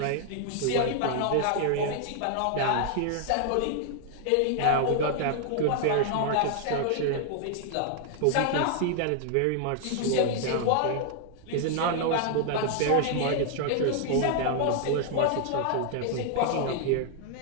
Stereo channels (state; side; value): different; both; correlation 0.00